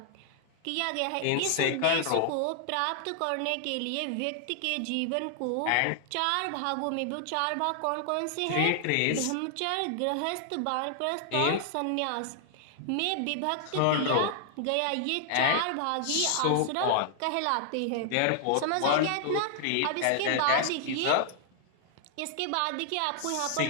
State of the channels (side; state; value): both; different; correlation 0.00